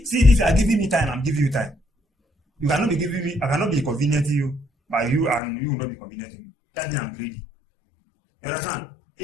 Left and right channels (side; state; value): right; drops out; at 5.4 s